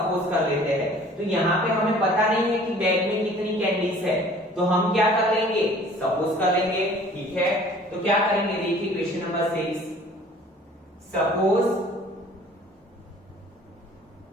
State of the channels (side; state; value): both; normal; correlation 0.51